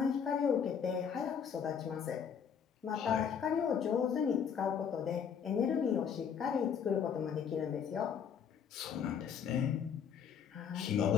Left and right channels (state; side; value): quieter; right; 7.4 dB